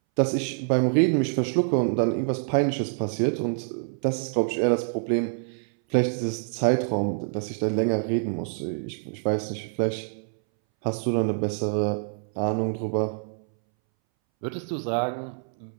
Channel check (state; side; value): silent; left; 61 dB below the other